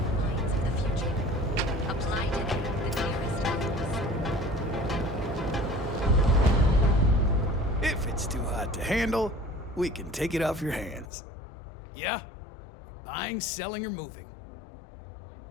If it's too hot to handle, we can take it off your hands. Yeah? Buying, selling, or moving?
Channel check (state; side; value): drops out; right; at 11.1 s